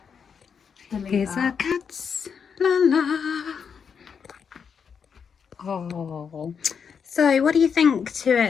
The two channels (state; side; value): quieter; right; 6.6 dB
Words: Here's our cats, la la. Oh. So what do you think to